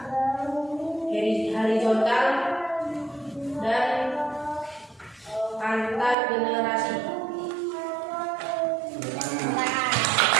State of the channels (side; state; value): left; drops out; at 6.2 s